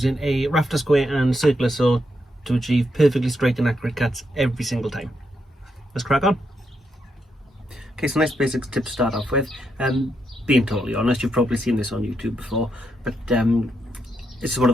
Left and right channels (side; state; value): both; normal; correlation 0.81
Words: a rafter square and circular saw to achieve perfectly straight and accurate cuts every single time. Let's crack on. Okay, so nice basic tip to start off with. Being totally honest, you've probably seen this on YouTube before, but it's one